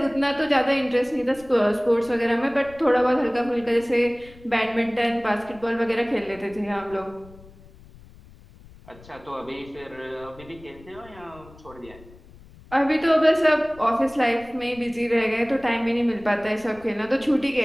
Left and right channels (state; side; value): noise; left; rumble, 22 dB below the sound